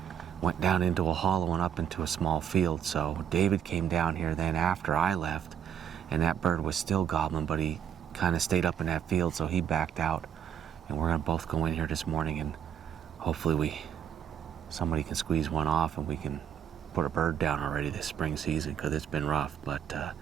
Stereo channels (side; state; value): left; quieter; 8.9 dB